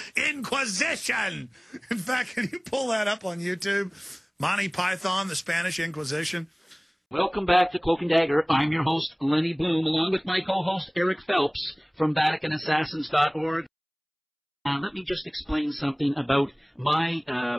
Inquisition." In fact, can you pull that up on YouTube? Monty Python, the Spanish Inquisition. Welcome back to Cloak and Dagger. I'm your host, Lenny Bloom, along with my co-host, Eric Phelps, from VaticanAssassins.org. Let me just explain something about my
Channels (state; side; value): identical; both; correlation 1.00